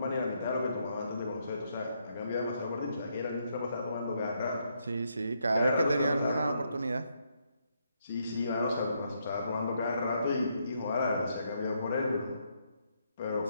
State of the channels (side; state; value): both; inverted; correlation -0.76